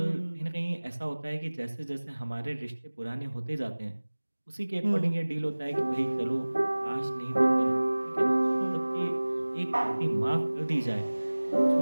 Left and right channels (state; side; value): inverted; both; correlation -1.00